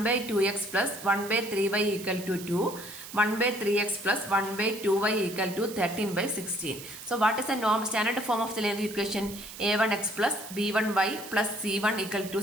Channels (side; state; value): right; noise; hiss, 13 dB below the sound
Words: by 2x plus 1 by 3y equal to 2. 1 by 3x plus 1 by 2y equal to 13 by 16. So what is the norm standard form of the linear equation? A1x plus b1y plus c1 equal to